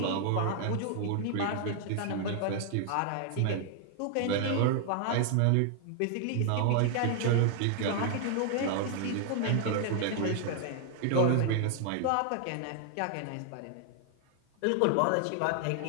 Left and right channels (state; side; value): different; both; correlation 0.00